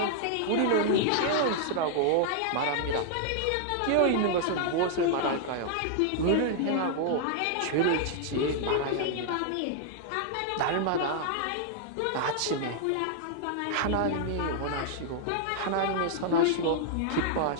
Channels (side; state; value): both; different; correlation -0.01